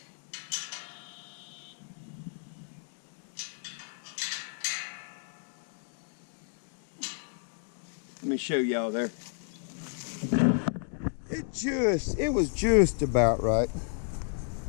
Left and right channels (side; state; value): right; silent; 56 dB below the other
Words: Let me show y'all there. It was just about right.